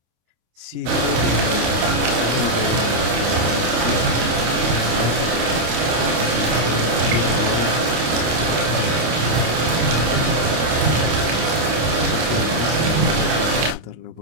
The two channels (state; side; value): late; left; 25 ms